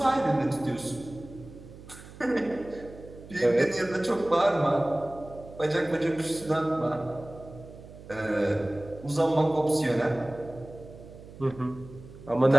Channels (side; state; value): right; noise; hum, 17 dB below the sound